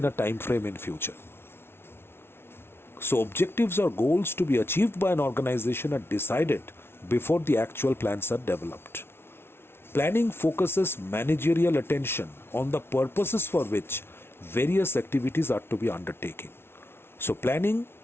a time frame in future. So objectives or goals to be achieved by an organization are decided before the actual plans are developed. Planning focuses managerial attention on the purposes for which various activities are to be undertaken. So planning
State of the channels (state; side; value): late; right; 0.12 ms